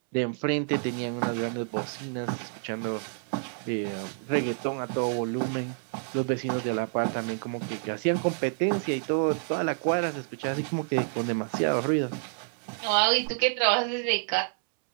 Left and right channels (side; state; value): left; silent; 59 dB below the other